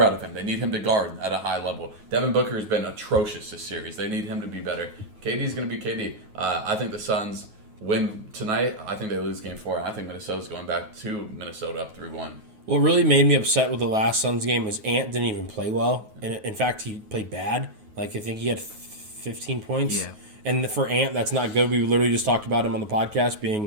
out of him. They need him to guard at a high level. Devin Booker has been atrocious this series. They need him to be better. KD's going to be KD. I think the Suns win tonight. I think they lose Game 4. I think Minnesota's going back to Minnesota up 3-1. What really made me upset with the last Suns game is Ant didn't even play well. And in fact, he played bad. I think he had 15 points. Yeah. And for Ant, that's not good. We literally just talked about him on the podcast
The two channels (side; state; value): left; late; 9.4 ms